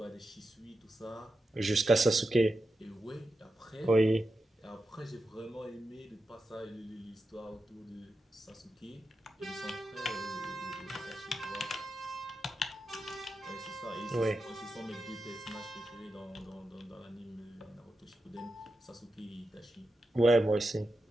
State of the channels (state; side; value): normal; both; correlation 0.89